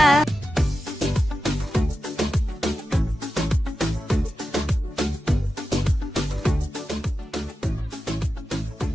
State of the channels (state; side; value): normal; both; correlation 0.91